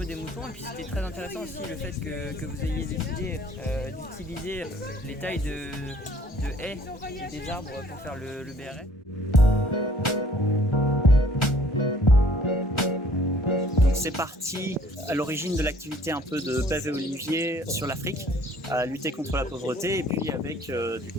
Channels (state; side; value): normal; both; correlation 0.57